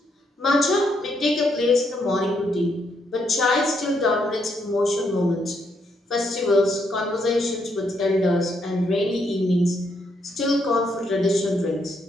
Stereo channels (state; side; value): normal; both; correlation 0.76